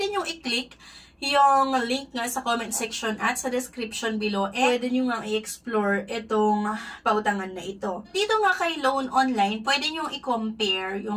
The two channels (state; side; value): identical; both; correlation 1.00